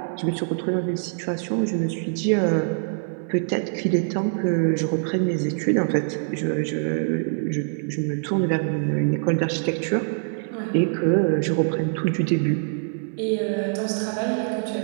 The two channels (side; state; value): left; silent; 59 dB below the other